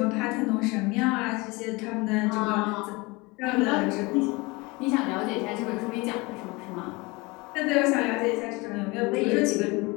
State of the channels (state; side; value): quieter; right; 24.8 dB